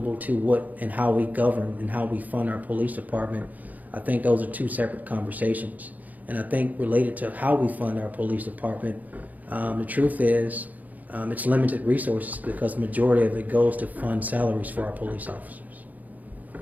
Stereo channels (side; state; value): left; late; 0.078 ms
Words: to what and how we govern and how we fund our police department, I think those are two separate conversations. And I think related to how we fund our police department, the truth is it's limited resources because the majority of it goes to fund salaries for our police officers.